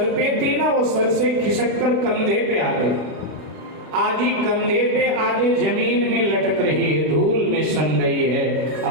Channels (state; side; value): late; left; 32 ms